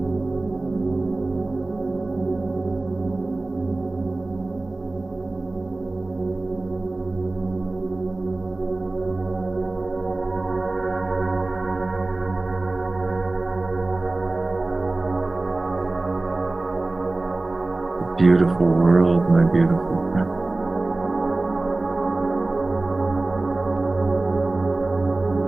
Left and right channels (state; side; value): quieter; left; 3.1 dB